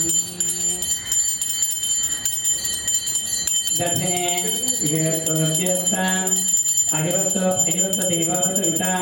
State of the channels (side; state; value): both; identical; correlation 1.00